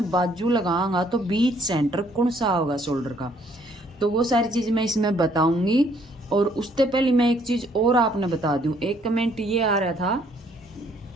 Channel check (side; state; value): both; normal; correlation 0.65